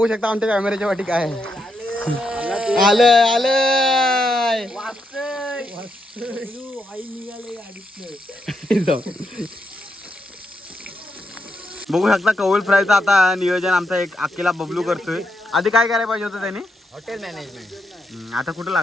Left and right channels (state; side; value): normal; both; correlation 0.81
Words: शकता आमच्या कॅमेऱ्याच्या वाटी काय आहे. आलंय बघू शकता कौल फ्रायचं आता नियोजन आमचा एक अकेला बबलू करतोय. आधी काय करायला पाहिजे होतं त्यांनी हॉटेल मॅनेजमेंट. आता कुठं